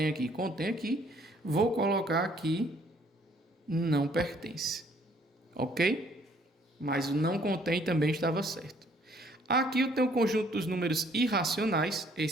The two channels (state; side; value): normal; both; correlation 0.62